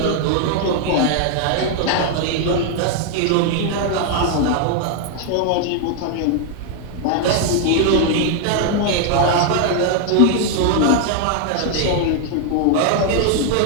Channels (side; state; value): both; different; correlation 0.00